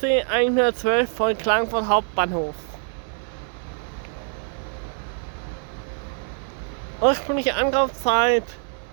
112 von Klagenfurt Hauptbahnhof. Ursprüngliche Anlaufzeit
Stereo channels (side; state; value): left; silent; 62 dB below the other